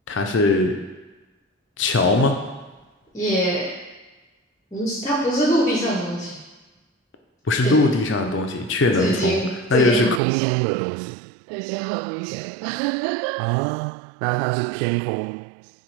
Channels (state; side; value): drops out; left; at 10.2 s